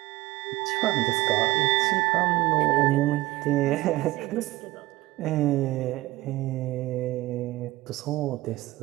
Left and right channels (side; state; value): left; quieter; 18.7 dB